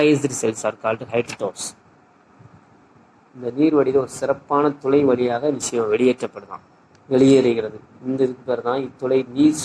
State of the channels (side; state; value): both; identical; correlation 1.00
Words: cells are called ஹைட்ரோடோர்ஸ். இந்த நீர் வடித ஒரு சிறப்பான துளை வழியாக விஷயம் வெளியேறுகிறது. இந்த இதுக்கு பேர் தான் இத்துளை நீர்